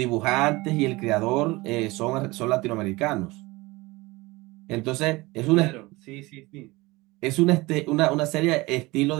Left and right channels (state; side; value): quieter; left; 21.9 dB